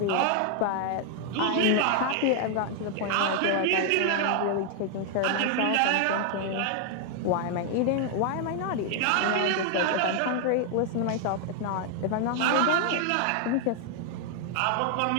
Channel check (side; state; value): both; different; correlation 0.00